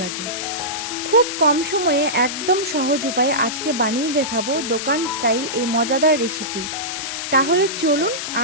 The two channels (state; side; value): noise; left; hiss, 5 dB below the sound